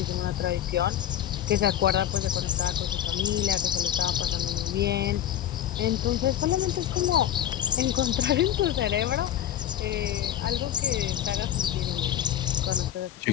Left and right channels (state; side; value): quieter; right; 11.4 dB